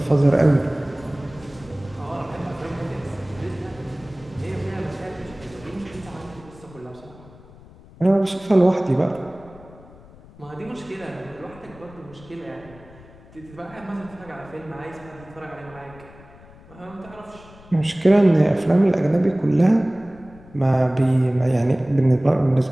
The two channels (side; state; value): left; noise; rumble, 22 dB below the sound